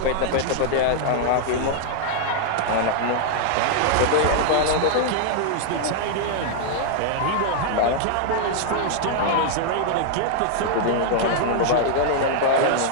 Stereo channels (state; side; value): different; both; correlation -0.01